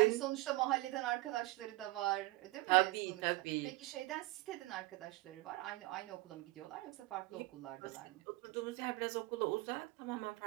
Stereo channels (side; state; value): left; quieter; 20.5 dB